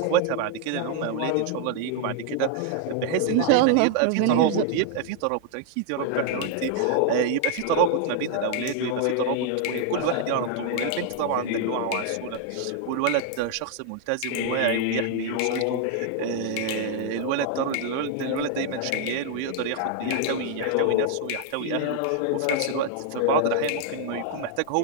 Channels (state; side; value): different; both; correlation 0.00